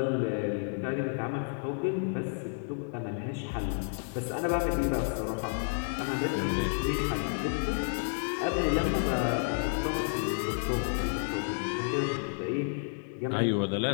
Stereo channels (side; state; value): right; silent; digital silence